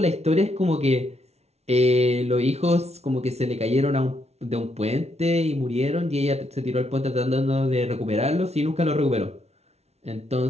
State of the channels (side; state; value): left; late; 0.31 ms